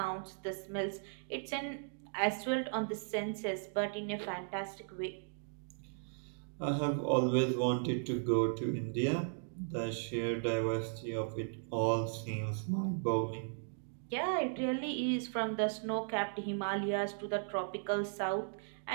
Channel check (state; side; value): silent; left; digital silence